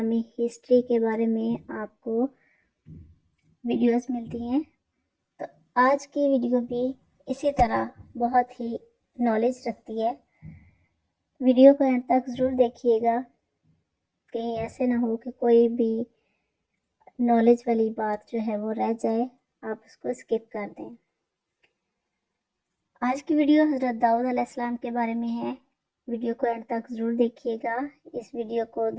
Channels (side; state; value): both; identical; correlation 1.00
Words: ہسٹری کے بارے میں آپ کو ویڈیوز ملتی ہیں، تو آج کی ویڈیو بھی اسی طرح بہت ہی نالج رکھتی ہے۔ ویڈیو کو اینڈ تک ضرور دیکھیے گا، کہیں ایسے نہ ہو کہ کوئی بھی نالج والی بات جو ہے وہ رہ جائے، آپ اس کو اسکپ کر دیں۔ آج کی ویڈیو حضرت داؤد علیہ السلام کے بارے میں ہے۔ ویڈیو کو اینڈ تک ضرور دیکھیے گا۔ اس ویڈیو کو